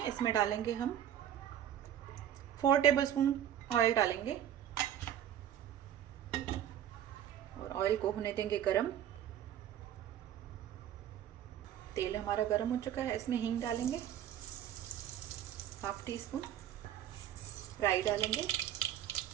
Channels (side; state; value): left; quieter; 10.7 dB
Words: इसमें डालेंगे हम 4 टेबल स्पून ऑयल डालेंगे और ऑयल को होने देंगे गरम। तेल हमारा गरम हो चुका है। इसमें हींग डालेंगे, 1/2 टीस्पून राई डालेंगे